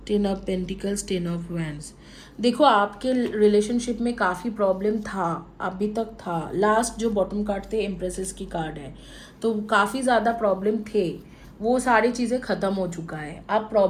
10 of pentacles, 10 of wands. देखो, आपके रिलेशनशिप में काफ़ी प्रॉब्लम था, अभी तक था। लास्ट जो बॉटम कार्ड थे एम्प्रेसेस की कार्ड है, तो काफ़ी ज़्यादा प्रॉब्लम थे, वो सारी चीज़ें ख़त्म हो चुका है, अब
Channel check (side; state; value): both; identical; correlation 1.00